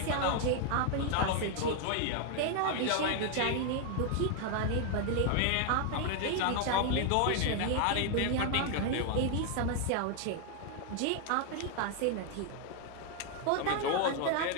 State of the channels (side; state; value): both; different; correlation 0.00